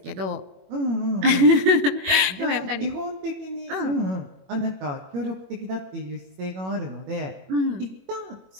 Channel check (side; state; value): left; late; 21 ms